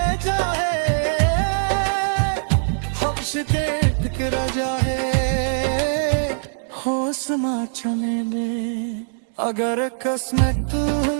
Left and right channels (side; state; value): left; silent; digital silence